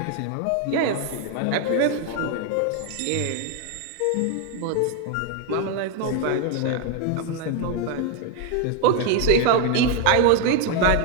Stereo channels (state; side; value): different; both; correlation 0.01